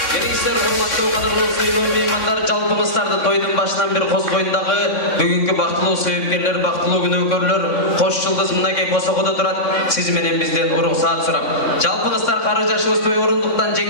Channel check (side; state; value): right; late; 3.6 ms